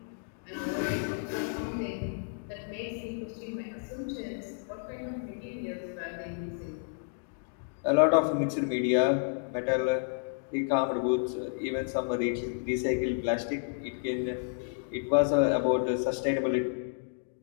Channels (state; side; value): silent; right; digital silence